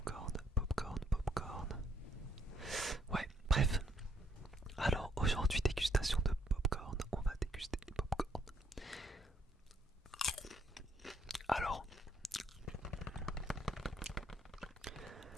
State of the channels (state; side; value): normal; both; correlation 0.70